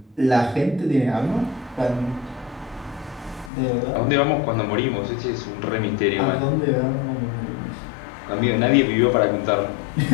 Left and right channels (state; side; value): drops out; right; at 3.5 s